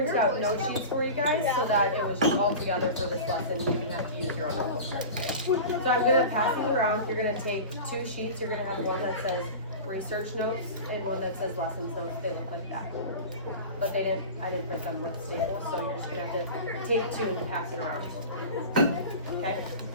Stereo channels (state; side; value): inverted; both; correlation -0.32